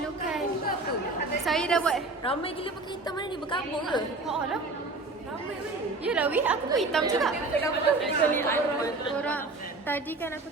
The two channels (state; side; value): quieter; left; 3.3 dB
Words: Saya dah buat. Ramai gila pakai hitam mana ni? Berkabung ke? Oh lah. Ramai weh. Yelah weh, aku pun hitam juga. Korang, tadi kan aku